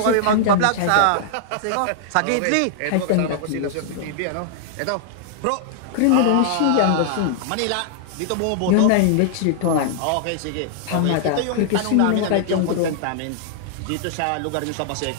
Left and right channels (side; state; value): both; different; correlation -0.01